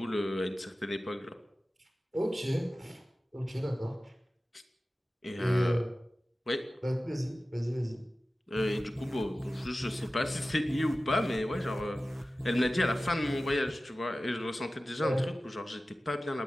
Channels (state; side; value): normal; both; correlation 0.96